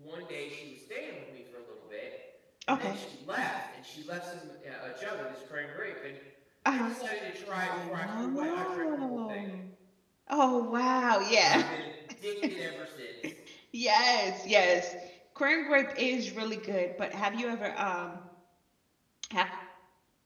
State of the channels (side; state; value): both; identical; correlation 1.00